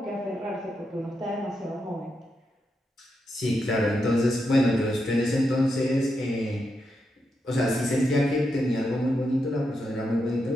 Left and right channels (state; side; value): normal; both; correlation 0.84